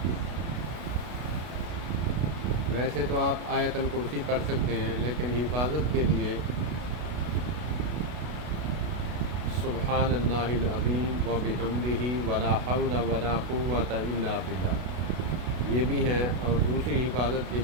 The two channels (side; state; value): left; late; 32 ms